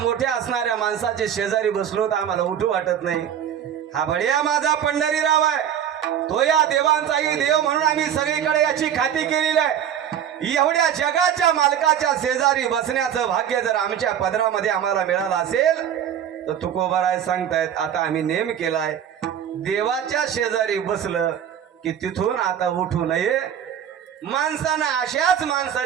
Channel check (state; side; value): quieter; left; 9.3 dB